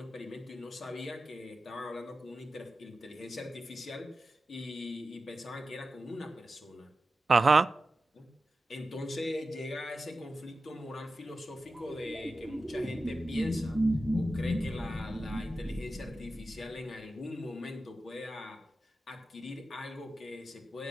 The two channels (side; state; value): both; normal; correlation 0.93